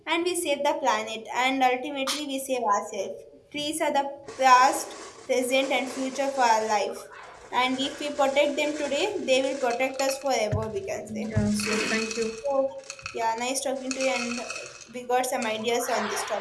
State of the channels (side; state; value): both; identical; correlation 1.00